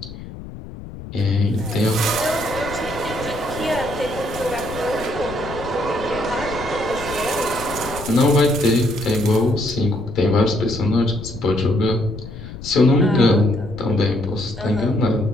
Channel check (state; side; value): noise; left; rumble, 13 dB below the sound